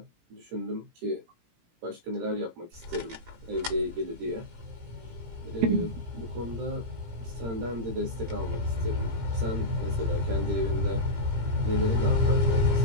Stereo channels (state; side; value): late; left; 17 ms